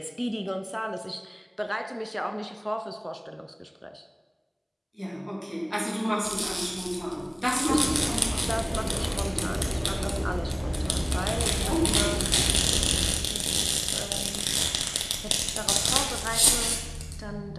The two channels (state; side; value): identical; both; correlation 1.00